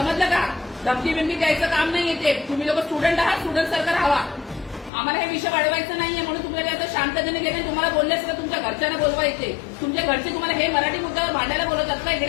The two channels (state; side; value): drops out; right; at 4.9 s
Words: का? धमकी बिमकी द्यायचं काम नाही येते. तुम्ही लोक स्टुडंट आहात, स्टुडंट सरकार हवा. आम्हाला हे विषय वाढवायचं नाहीये, म्हणून तुम्हाला आता शांततेने गेले. तुम्हाला बोलले असं तुमच्या घरच्यांना बोलवायचे. तुमच्या घरचे तुम्हाला हे मराठी मुद्द्यावर भांडायला बोलवतात का?